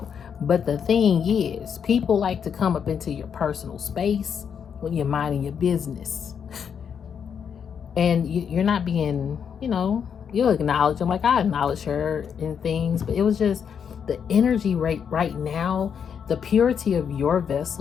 But the thing is, people like to come up into your personal space when you're minding your business. And you're not being, you know, you'll acknowledge them. Like I acknowledge her and things, but it was just the energy right now, the purity of your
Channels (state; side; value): quieter; right; 7.4 dB